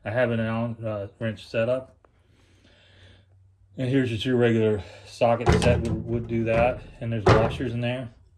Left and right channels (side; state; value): both; identical; correlation 1.00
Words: I have an Allen wrench setup. And here's just your regular socket set would do that. And there's washers in there.